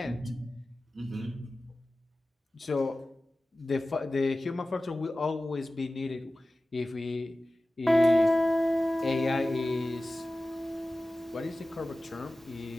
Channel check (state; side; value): normal; both; correlation 0.96